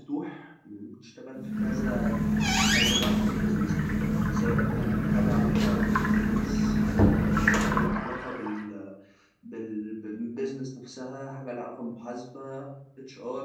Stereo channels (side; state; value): both; identical; correlation 1.00